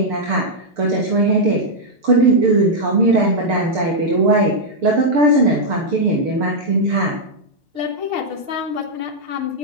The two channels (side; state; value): left; late; 6.6 ms